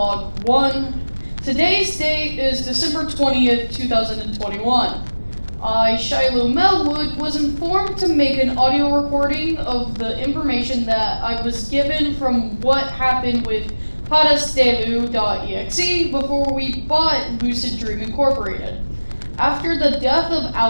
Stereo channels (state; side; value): inverted; both; correlation -1.00